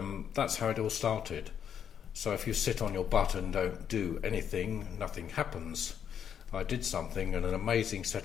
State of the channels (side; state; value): right; quieter; 8.5 dB